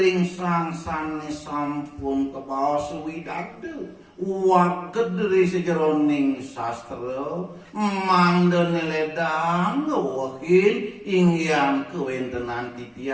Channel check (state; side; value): identical; both; correlation 1.00